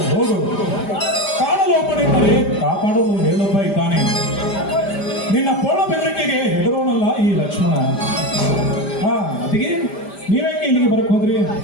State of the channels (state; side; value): late; right; 5.0 ms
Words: ಮಾಡೋದು ಮೇಲೊಬ್ಬ ಇದ್ದಾನೆ. ನಿನ್ನ ಪೋಣ ಬೆದರಿಕೆಗೆ ಹೆದರೋನಲ್ಲ ಈ ಲಕ್ಷ್ಮಣ. ಅದಕ್ಕೆ ನೀವೇಕೆ ಇಲ್ಲಿಗೆ ಬರಕ್ ಹೋದ್ರಿ?